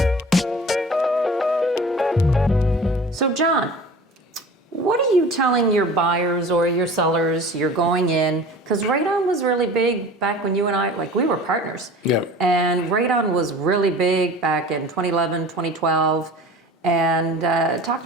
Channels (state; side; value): normal; both; correlation 0.40